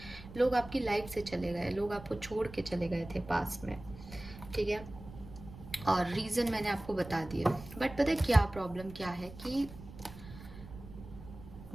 लोग आपकी लाइफ से चले गए, लोग आपको छोड़ के चले गए थे पास्ट में, ठीक है। और रीज़न मैंने आपको बता दिया। बट पता है क्या प्रॉब्लम क्या है कि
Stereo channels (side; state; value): right; noise; rumble, 15 dB below the sound